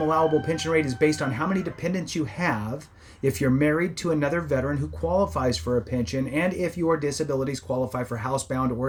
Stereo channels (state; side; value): identical; both; correlation 1.00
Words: allowable pension rate is based on how many dependents you have, if you're married to another veteran who qualifies for a pension, and if your disabilities qualify for housebound